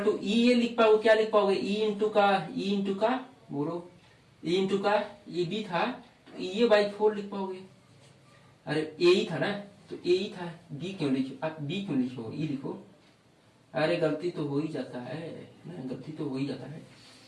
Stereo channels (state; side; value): identical; both; correlation 1.00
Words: टू ई ये लिख पाओगे, क्या लिख पाओगे? ई इंटू का बोलो, ई इंटू का ये बी था, ये बाई 4 लिख पाओगे। अरे ए ही था ना, तो ए ही था, बी क्यों लिखो? आप बी क्यों लिखो? ई लिखो। अरे गलती तो हो ही जाता है ना, गलती तो हो ही जाता है।